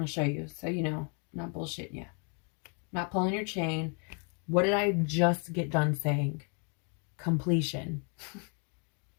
going to show you so you know, I'm not bullshitting you. Not pulling your chain. What did I just get done saying? Completion.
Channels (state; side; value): quieter; right; 38.0 dB